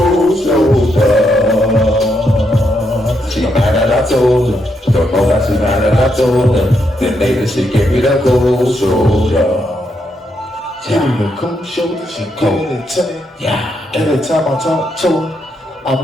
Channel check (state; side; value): normal; both; correlation 0.79